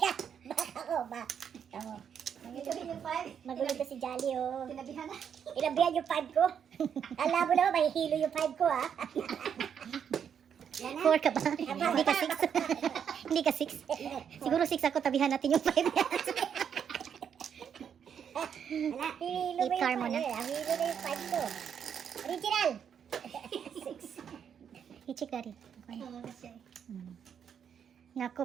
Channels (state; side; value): quieter; left; 8.0 dB